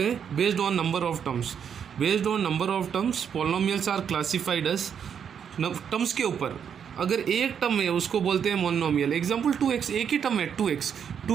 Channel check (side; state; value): left; quieter; 7.8 dB